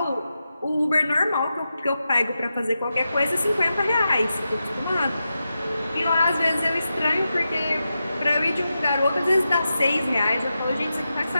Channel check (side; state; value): both; inverted; correlation -0.90